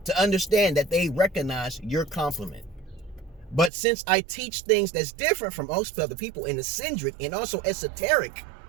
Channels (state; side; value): drops out; left; at 3.7 s